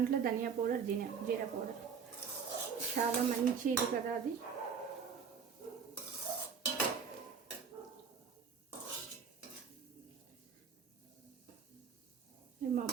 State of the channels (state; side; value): quieter; left; 6.3 dB